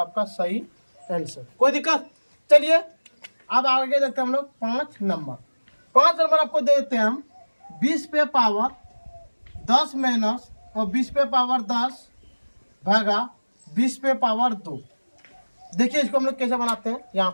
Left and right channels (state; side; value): inverted; both; correlation -1.00